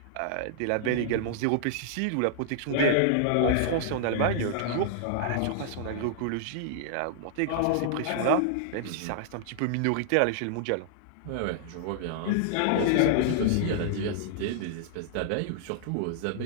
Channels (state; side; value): different; both; correlation -0.01